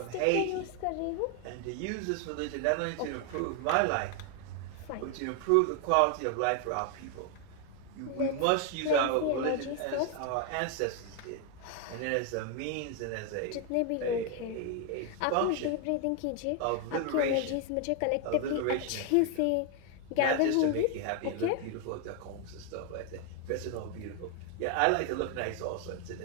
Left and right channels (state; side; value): different; both; correlation 0.01